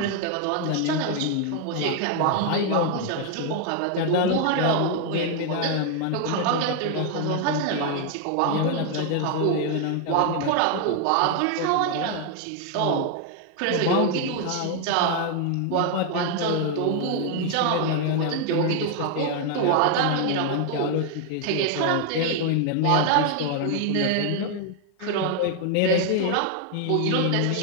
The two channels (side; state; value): both; different; correlation 0.00